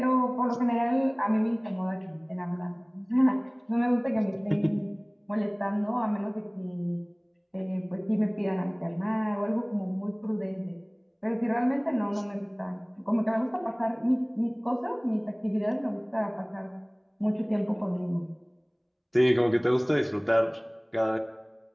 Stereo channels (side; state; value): both; identical; correlation 1.00